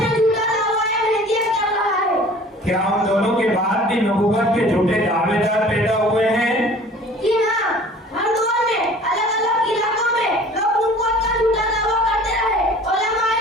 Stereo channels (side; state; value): both; normal; correlation 0.47